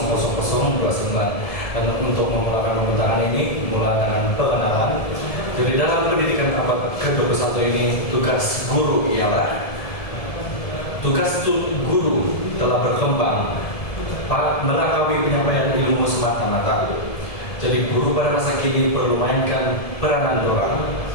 dan untuk memulakan pembentangan ini mulai dengan pengenalan. Jadi dalam pendidikan abad ke-21 ini tugas guru ialah guru telah berkembang melalui penyampaian ilmu semata-mata. Jadi guru pada masa kini perlu mainkan peranan dorang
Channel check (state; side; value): late; right; 1.7 ms